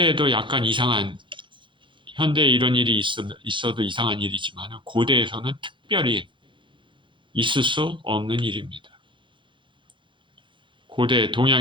약간 이상한, 현대에 이런 일이 있어도 이상한 일이지만 고대에서는 특별히 있을 수 없는 일입니다. 고대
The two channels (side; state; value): left; late; 0.24 ms